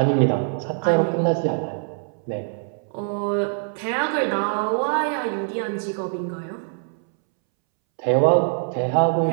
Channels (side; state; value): left; silent; 63 dB below the other